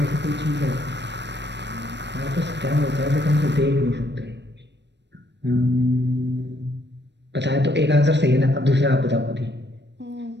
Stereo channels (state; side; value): late; left; 0.51 ms